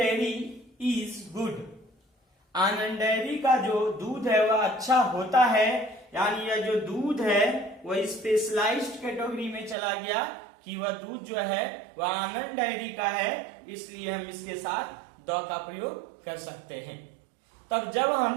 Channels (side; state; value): left; drops out; at 9.8 s